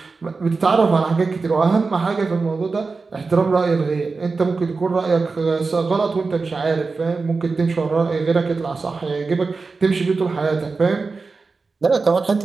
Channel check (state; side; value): quieter; left; 4.2 dB